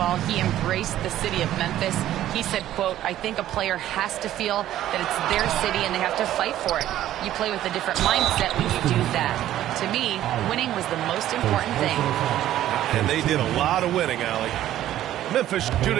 He embraced the city of Memphis. He said, quote, "I think a player has to feel that it's their city and they have to fight for it. You play with a different mindset when you do that. To me, winning was the most important thing." And they did a lot of winning, Allie. Memphis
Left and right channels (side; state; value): left; quieter; 12.9 dB